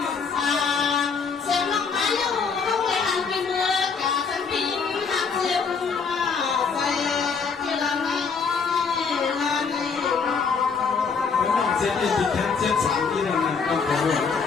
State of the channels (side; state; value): right; quieter; 5.5 dB